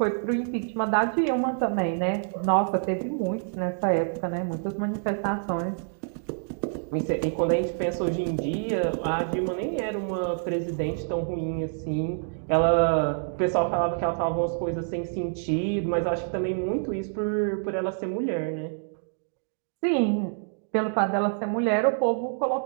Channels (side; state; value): left; silent; digital silence